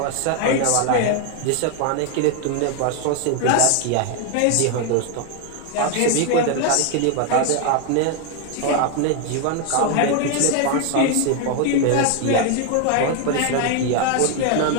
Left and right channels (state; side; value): different; both; correlation 0.01